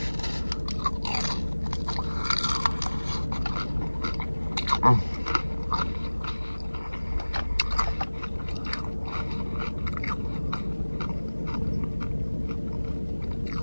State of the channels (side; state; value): both; inverted; correlation -1.00